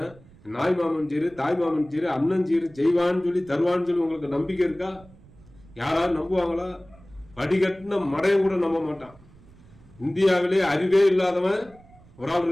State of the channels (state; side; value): noise; right; rumble, 25 dB below the sound